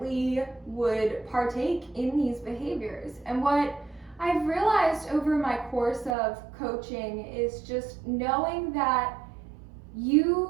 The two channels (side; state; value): left; drops out; at 6.2 s